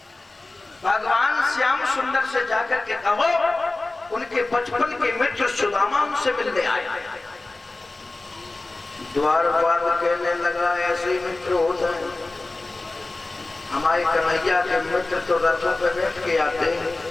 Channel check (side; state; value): right; quieter; 3.1 dB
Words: भगवान श्याम सुंदर से जाकर के कहो उनके बचपन के मित्र सुदामा उनसे मिलने आए। द्वारपाल कहने लगा, ऐसे मित्र होते हैं। हमारे कन्हैया के मित्र तो रथों पे बैठ के आते हैं,